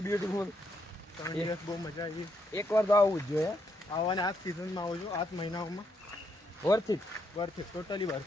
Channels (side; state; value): both; normal; correlation 0.77